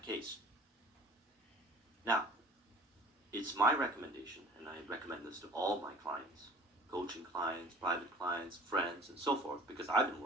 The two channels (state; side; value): normal; both; correlation 0.46